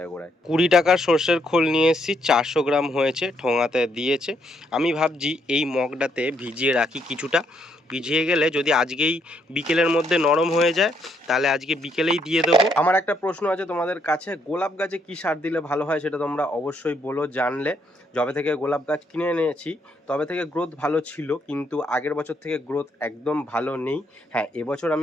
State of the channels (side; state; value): both; normal; correlation 0.74